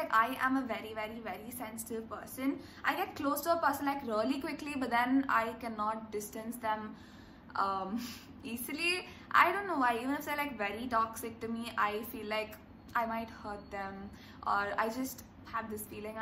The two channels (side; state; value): both; identical; correlation 1.00